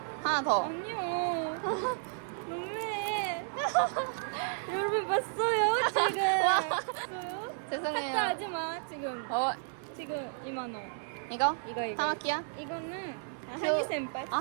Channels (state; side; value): silent; left; digital silence